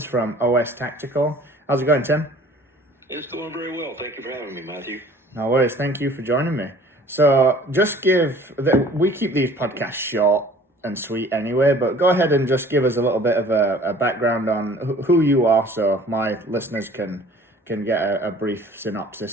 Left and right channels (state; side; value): normal; both; correlation 0.50